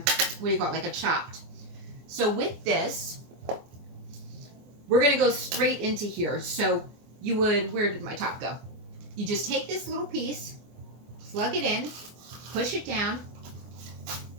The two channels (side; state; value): left; late; 24 ms